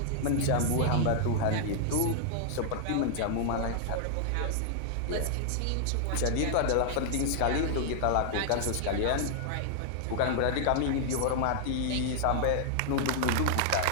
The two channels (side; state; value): both; different; correlation -0.01